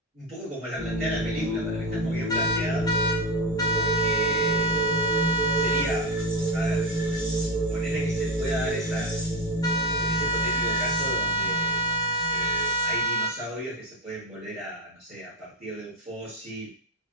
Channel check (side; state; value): both; normal; correlation 0.15